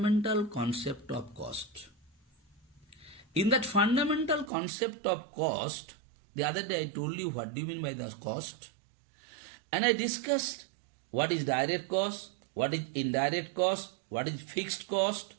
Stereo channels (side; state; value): left; drops out; at 4.5 s